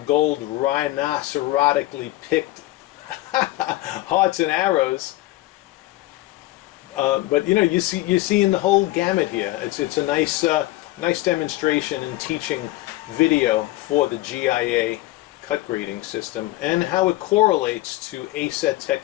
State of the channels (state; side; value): quieter; right; 17.5 dB